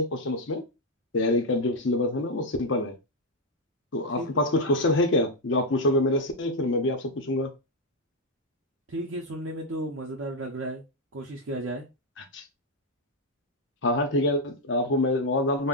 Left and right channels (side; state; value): both; normal; correlation 0.00